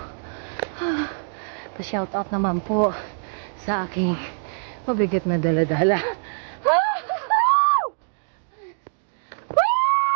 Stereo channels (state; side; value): silent; left; digital silence